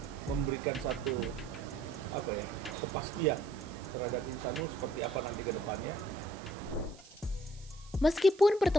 memberikan satu kepastian terhadap Insanul seperti apa nanti ke depannya. Meskipun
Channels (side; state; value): right; noise; hiss, 23 dB below the sound